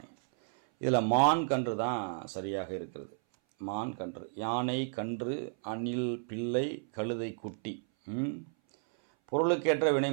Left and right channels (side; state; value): left; silent; 56 dB below the other